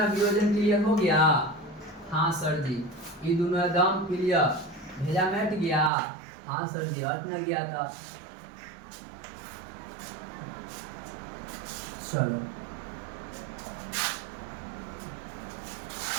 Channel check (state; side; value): drops out; left; at 5.9 s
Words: वियोजन क्लियर हो गया? हाँ सर जी ये दोनों एकदम क्लियर। भेजा मिट गया? हाँ सर जी हट न गया था। चलो